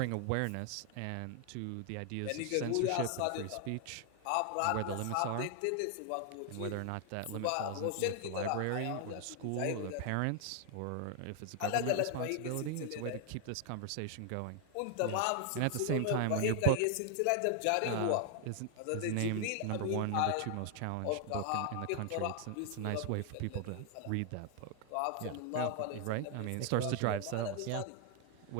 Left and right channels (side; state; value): both; different; correlation 0.00